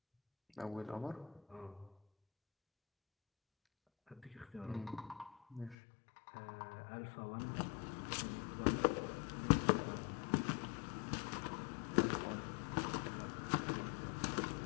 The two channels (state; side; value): drops out; right; at 5.8 s